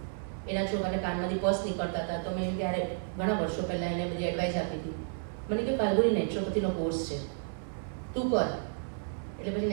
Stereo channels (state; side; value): silent; left; 56 dB below the other